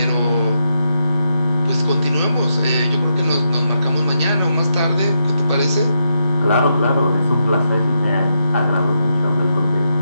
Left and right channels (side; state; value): both; inverted; correlation -0.82